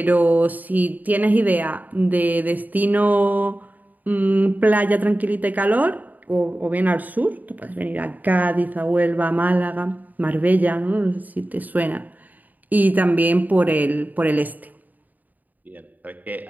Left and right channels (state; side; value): late; left; 0.082 ms